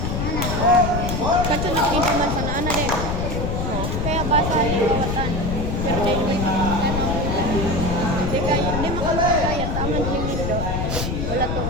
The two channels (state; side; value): noise; left; rumble, 1 dB below the sound